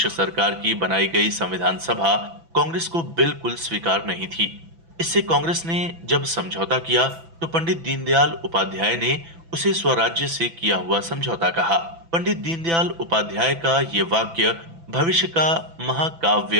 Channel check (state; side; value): late; left; 6.0 ms